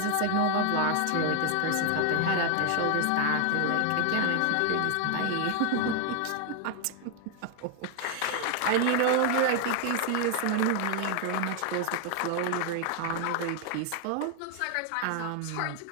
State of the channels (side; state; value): both; different; correlation 0.00